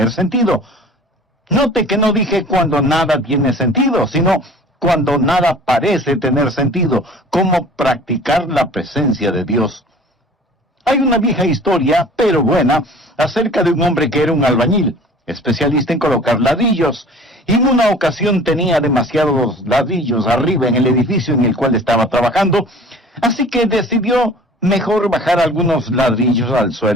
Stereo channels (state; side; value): normal; both; correlation 0.46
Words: sentido. Note que no dije cuando nada tiene sentido, sino cuando nada parece tener sentido. Cómo practicar la presencia de Dios. Hay una vieja historia, pero buena, acerca de un hombre que era un albañil, especialista en colocar ladrillos, y en una ocasión tenía demasiados ladrillos arriba en el edificio en el cual estaba trabajando, así que decidió mejor bajar algunos ladrillos al